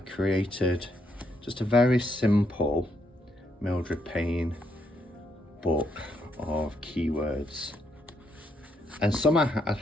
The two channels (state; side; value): normal; both; correlation 0.76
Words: just a very simple Mildred Pain book of keywords, and some I